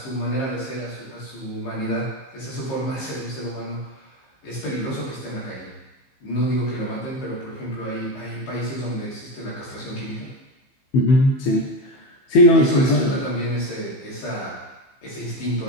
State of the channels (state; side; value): late; right; 15 ms